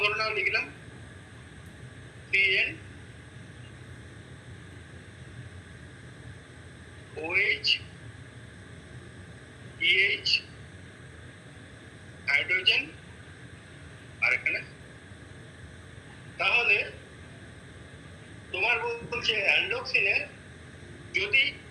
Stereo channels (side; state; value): both; identical; correlation 1.00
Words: ধরে নাও লিখলাম CN OH EH হাইড্রোজেন আর এখানে। তাহলে তোমার বলছে অ্যান্ডোক্সিনে যদি